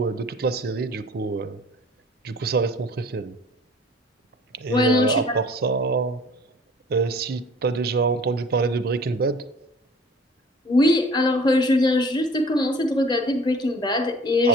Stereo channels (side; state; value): both; normal; correlation 0.49